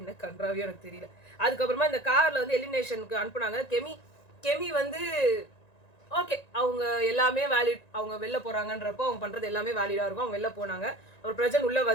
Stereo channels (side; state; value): right; late; 1.9 ms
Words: என்ன கன்றாவியோ எனக்கு தெரியல. அதுக்கப்புறமா இந்த கார்ல வந்து எலிமினேஷனுக்கு அனுப்புனாங்க. கெமி வந்து ஓகே, அவங்க எல்லாமே வேலிட், அவங்க வெளில போறாங்கன்றப்போ அவங்க பண்றது எல்லாமே வேலிடா இருக்கும். அவங்க வெளில போனாங்க. அவர் பிரஜன் உள்ள